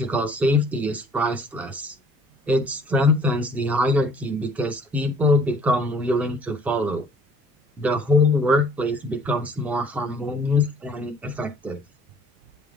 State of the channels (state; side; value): normal; both; correlation 0.55